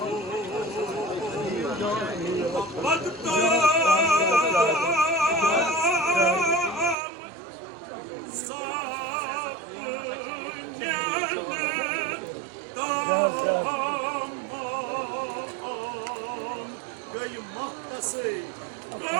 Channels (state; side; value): drops out; left; at 7.0 s